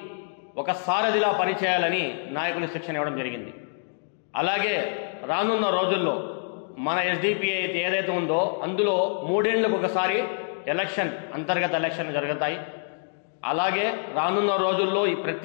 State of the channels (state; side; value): silent; right; digital silence